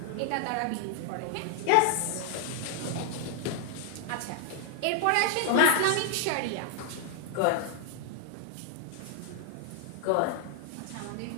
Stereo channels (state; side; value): different; both; correlation 0.00